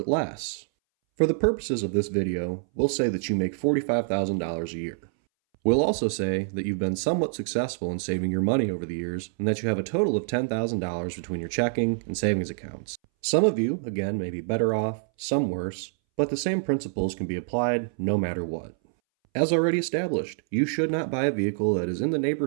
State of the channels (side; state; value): left; silent; 61 dB below the other